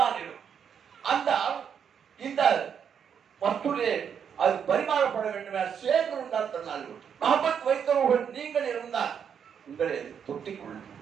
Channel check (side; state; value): left; quieter; 7.7 dB